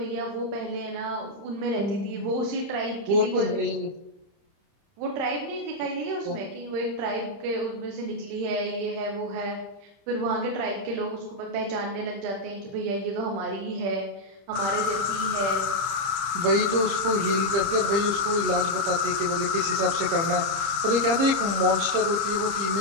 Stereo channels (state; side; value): late; left; 29 ms